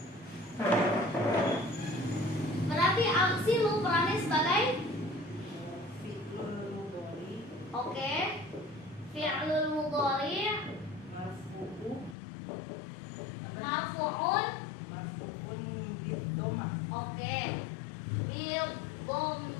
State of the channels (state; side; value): drops out; right; at 12.2 s